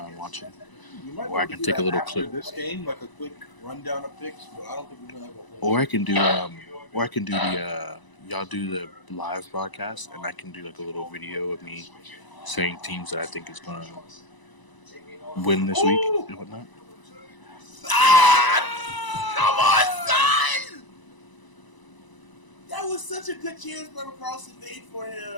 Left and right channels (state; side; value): late; right; 1.0 ms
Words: watching. Or I can take a little clip. This game, a quick rundown of picks, but I don't think we're gonna have a whole. Or I can do the y'all do the live broadcast, and I can do a little video of me saying teams that I think is gonna win this week and whatnot. Come on, son! That was such a good chance Brother Carlson made for